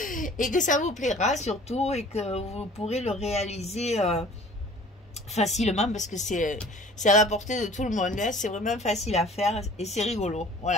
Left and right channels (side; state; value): both; normal; correlation 0.48